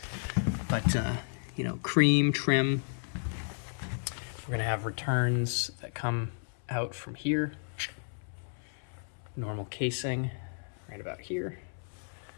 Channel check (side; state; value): right; silent; 56 dB below the other